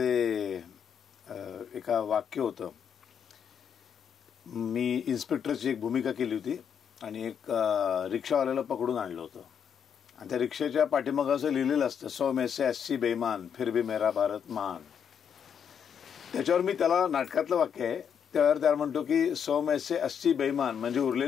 एका वाक्य होतं. मी इन्स्पेक्टरची एक भूमिका केली होती आणि एक रिक्षावाल्याला पकडून आणलं होतं आणि त्या रिक्षेच्या पाठीमागं असं लिहिलेलं असतं 100 में से 80 बेईमान फिर भी मेरा भारत महान. त्याच्यावर मी त्याला नाटकातलं वाक्य आहे त्यावर त्याला म्हणतो की 100 में से 80 बेईमान म्हणजे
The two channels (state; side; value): quieter; right; 7.8 dB